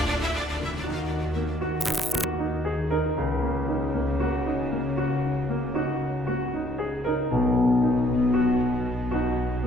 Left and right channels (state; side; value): normal; both; correlation 0.64